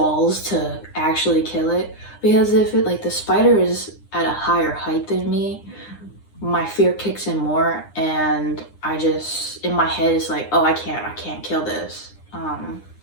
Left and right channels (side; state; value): right; late; 9.8 ms